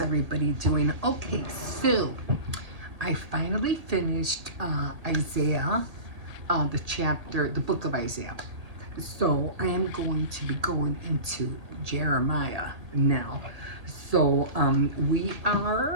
everybody doing? Okay, so I finally finished Isaiah, the book of Isaiah. So I am going to be going into Jeremiah now. So we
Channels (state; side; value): late; left; 1.8 ms